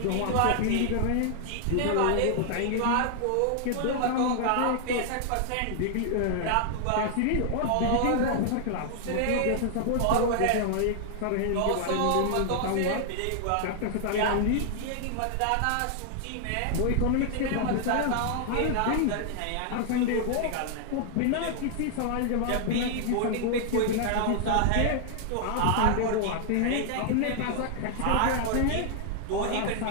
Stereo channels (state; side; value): different; both; correlation 0.00